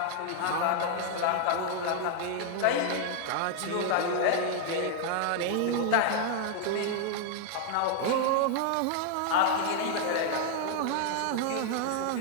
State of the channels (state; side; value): different; both; correlation 0.00